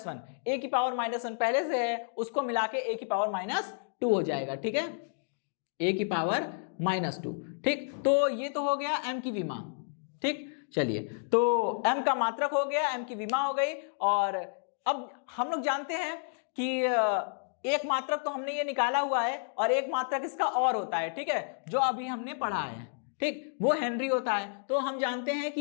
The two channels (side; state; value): right; silent; digital silence